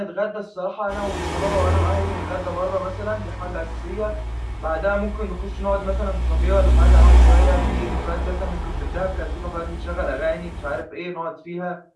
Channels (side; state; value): both; identical; correlation 1.00